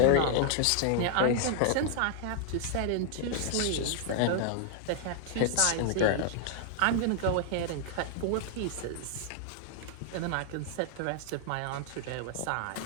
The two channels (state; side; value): different; both; correlation -0.01